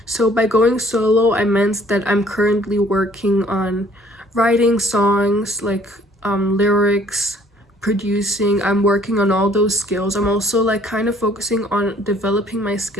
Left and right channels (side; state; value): both; normal; correlation 0.58